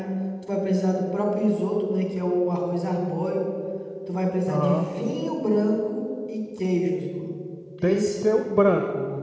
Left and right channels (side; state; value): both; identical; correlation 1.00